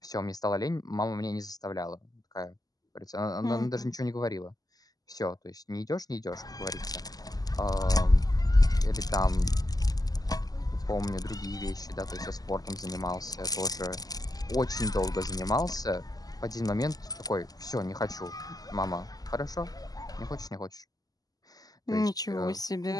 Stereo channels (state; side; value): late; right; 0.18 ms